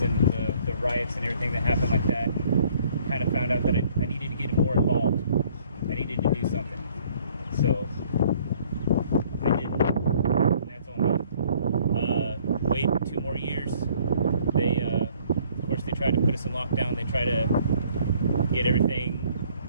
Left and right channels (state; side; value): inverted; both; correlation -0.59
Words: and the riots and everything that happened like that. Kind of found out that I needed to get more involved. I needed to do something. So I did. And that's on me. Wait 2 more years. They, of course, they tried to put us in lockdown. They tried to get everything